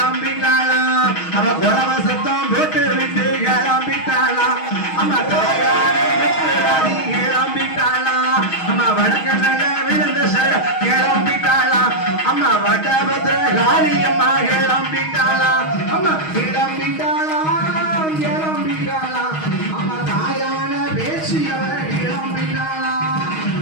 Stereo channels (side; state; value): right; late; 6.3 ms